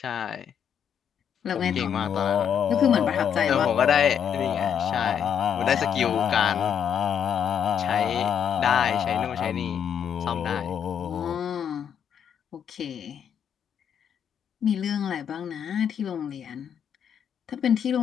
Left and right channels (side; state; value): right; quieter; 8.3 dB